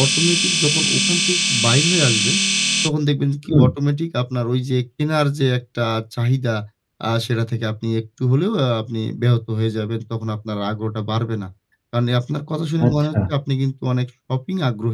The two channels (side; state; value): both; identical; correlation 1.00